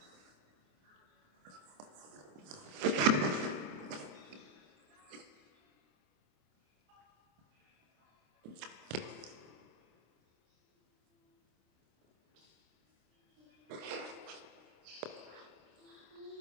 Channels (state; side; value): late; left; 26 ms